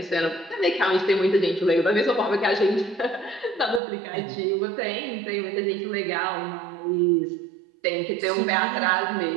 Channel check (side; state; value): left; drops out; at 3.8 s